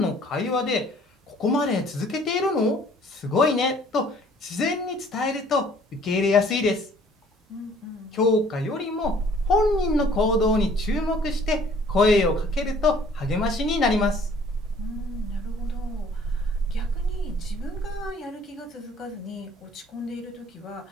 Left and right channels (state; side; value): normal; both; correlation 0.56